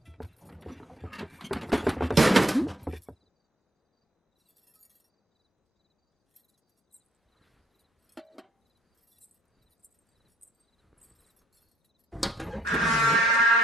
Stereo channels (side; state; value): both; normal; correlation 0.64